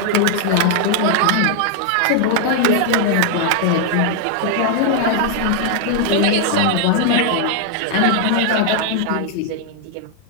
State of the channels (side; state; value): both; different; correlation 0.00